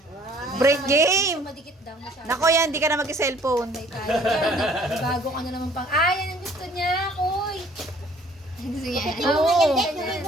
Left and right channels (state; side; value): normal; both; correlation 0.56